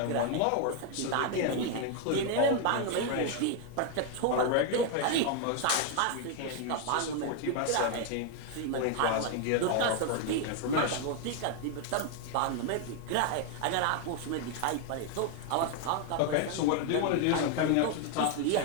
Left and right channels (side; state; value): both; different; correlation 0.00